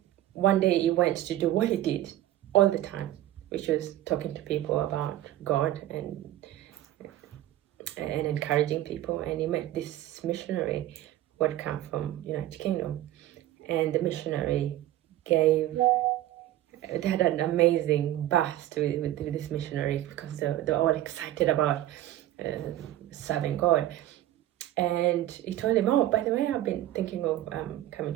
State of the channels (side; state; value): left; quieter; 14.1 dB